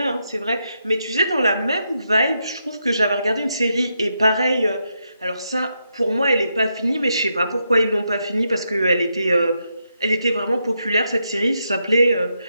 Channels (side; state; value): both; inverted; correlation -0.82